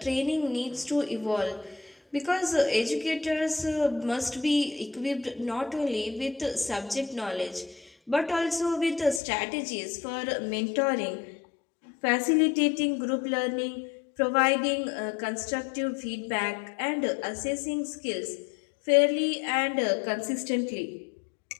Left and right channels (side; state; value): right; drops out; at 9.2 s